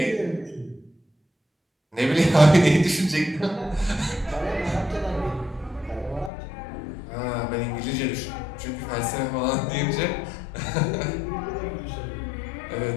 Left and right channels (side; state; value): right; drops out; at 6.3 s